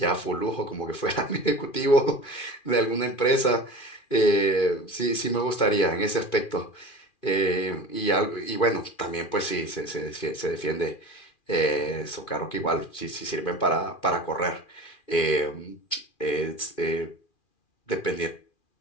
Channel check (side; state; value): right; late; 2.4 ms